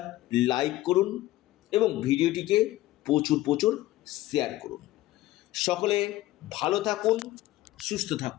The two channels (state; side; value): quieter; right; 16.5 dB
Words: লাইক করুন এবং ভিডিওটিকে প্রচুর শেয়ার করুন। সকলে ভালো থাকুন, সুস্থ